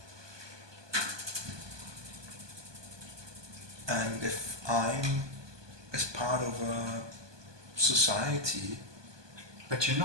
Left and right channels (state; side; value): late; left; 1.2 ms